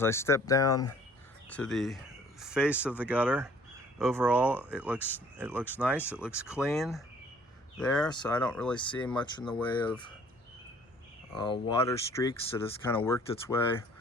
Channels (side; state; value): both; normal; correlation 0.56